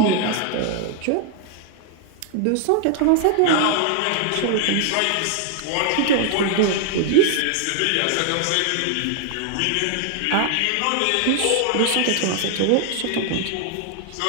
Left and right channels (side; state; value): both; different; correlation 0.00